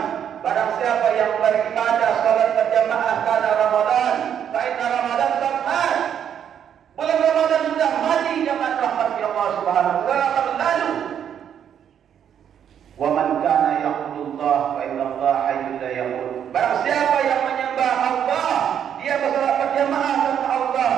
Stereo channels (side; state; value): left; quieter; 8.9 dB